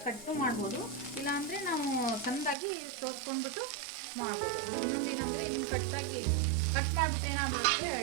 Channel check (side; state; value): left; drops out; at 2.6 s